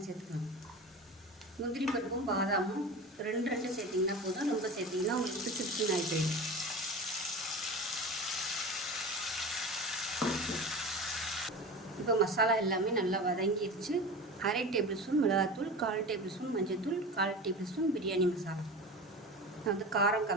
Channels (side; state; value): both; normal; correlation 0.32